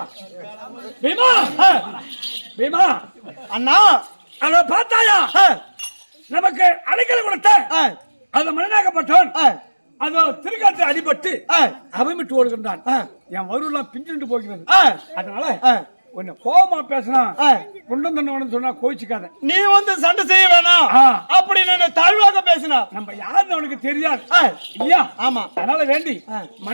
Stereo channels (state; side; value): inverted; both; correlation -1.00